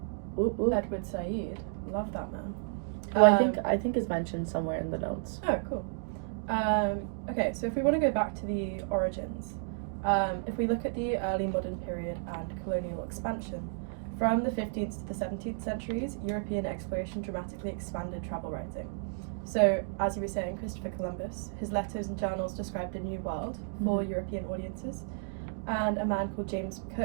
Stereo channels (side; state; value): left; silent; digital silence